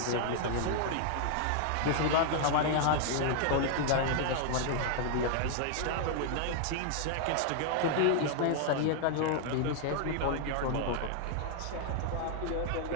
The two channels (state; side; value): different; both; correlation 0.00